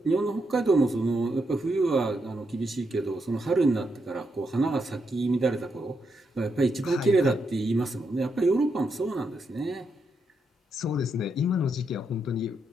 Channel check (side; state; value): both; normal; correlation 0.81